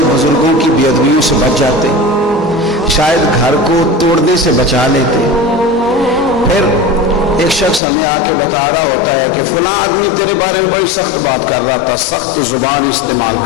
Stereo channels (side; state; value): right; drops out; at 7.8 s